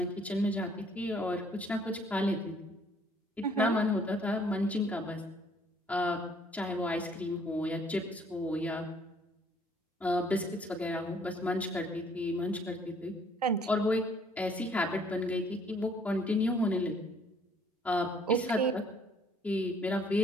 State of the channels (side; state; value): both; normal; correlation 0.61